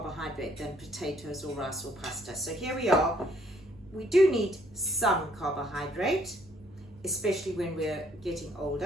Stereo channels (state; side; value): normal; both; correlation 0.65